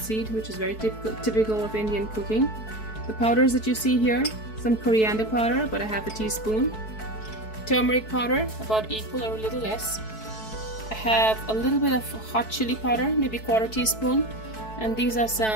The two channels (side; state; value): right; late; 4.6 ms